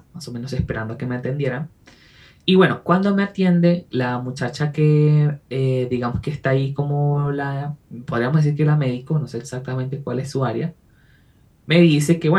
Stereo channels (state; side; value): identical; both; correlation 1.00